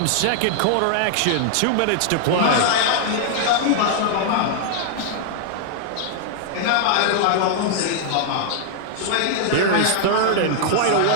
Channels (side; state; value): both; different; correlation -0.01